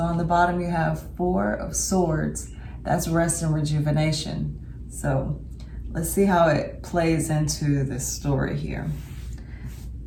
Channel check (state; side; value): identical; both; correlation 1.00